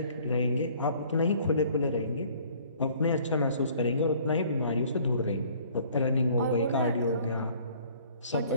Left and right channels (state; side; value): inverted; both; correlation -0.56